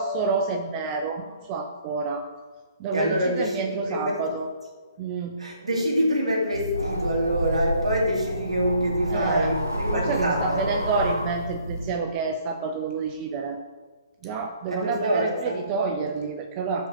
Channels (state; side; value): inverted; both; correlation -0.60